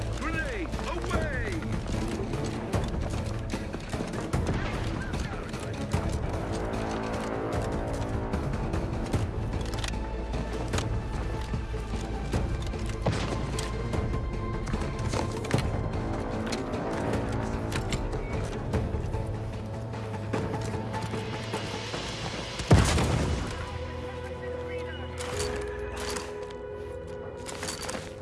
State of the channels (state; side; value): identical; both; correlation 1.00